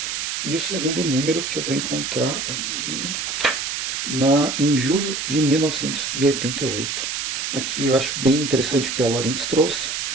E o segundo número que eu vou encontrar aqui em julho de 1988. Aqui eu acho bem interessante o que a Lawrence trouxe,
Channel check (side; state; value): right; noise; hiss, 3 dB below the sound